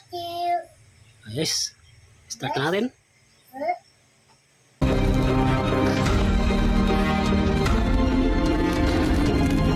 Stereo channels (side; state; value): both; identical; correlation 1.00